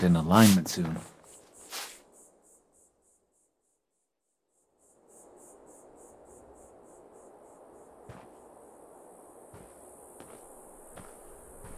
in alignment soon.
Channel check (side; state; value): both; identical; correlation 1.00